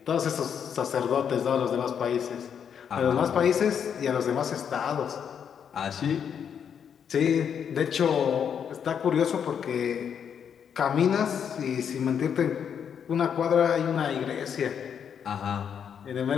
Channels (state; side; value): quieter; right; 7.8 dB